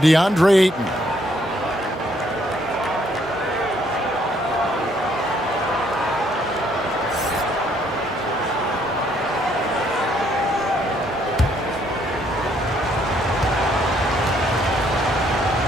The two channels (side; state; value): both; normal; correlation 0.68